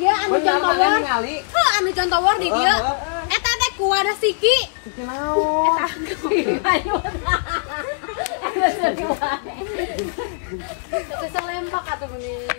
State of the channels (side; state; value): right; silent; digital silence